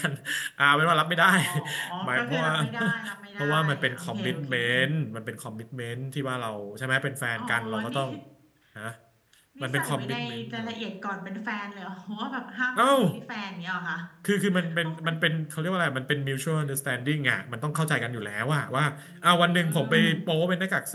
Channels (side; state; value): both; identical; correlation 1.00